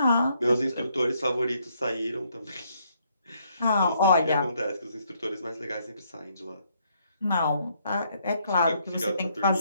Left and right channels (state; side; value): inverted; both; correlation -0.71